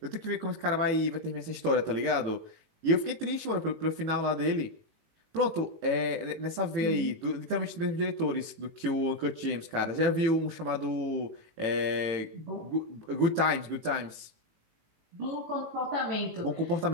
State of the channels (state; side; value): late; left; 18 ms